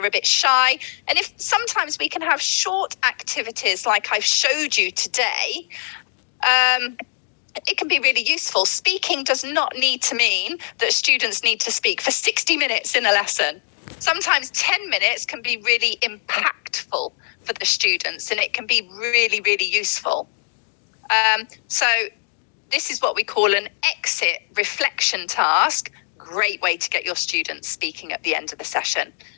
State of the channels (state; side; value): silent; right; digital silence